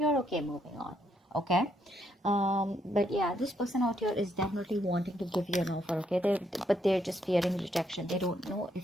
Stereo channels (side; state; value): both; normal; correlation 0.74